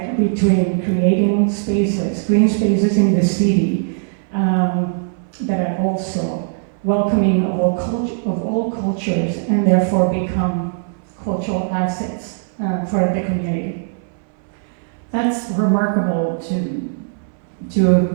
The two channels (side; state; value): left; silent; 66 dB below the other